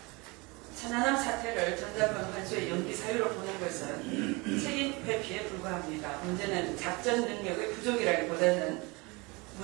천안함 사태를 전작권 환수의 연기 사유로 보는 것은 책임 회피에 불과합니다. 문제는 작전 능력의 부족이라기보다는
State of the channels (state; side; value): quieter; left; 26.3 dB